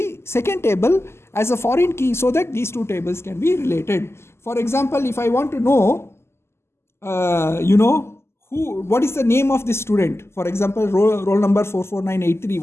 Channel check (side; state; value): right; late; 0.12 ms